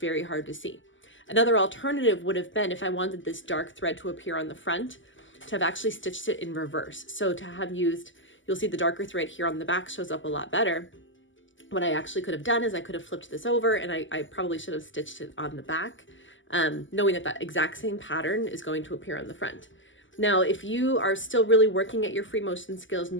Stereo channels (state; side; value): late; right; 0.55 ms